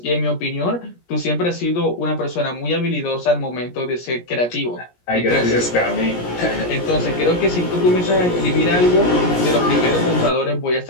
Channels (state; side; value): late; right; 17 ms